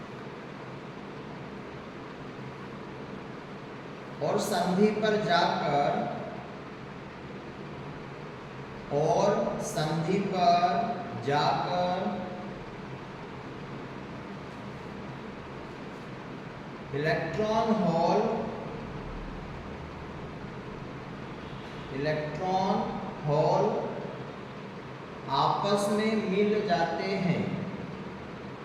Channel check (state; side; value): identical; both; correlation 1.00